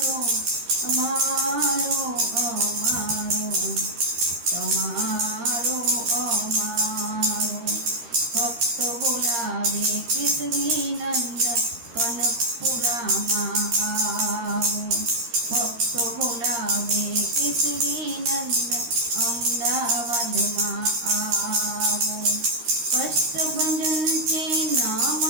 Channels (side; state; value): left; late; 13 ms